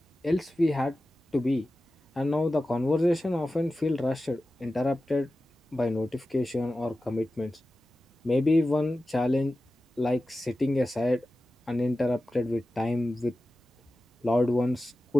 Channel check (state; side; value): normal; both; correlation 0.94